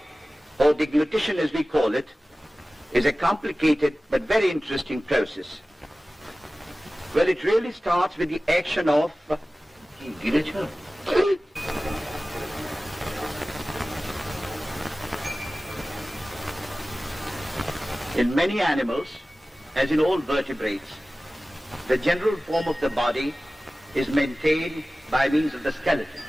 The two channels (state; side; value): normal; both; correlation 0.97